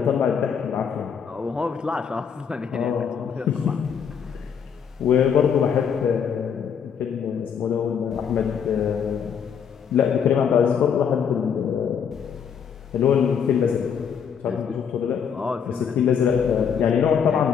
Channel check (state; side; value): quieter; right; 7.3 dB